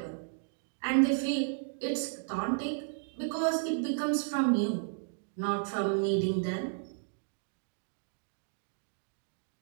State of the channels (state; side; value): silent; left; digital silence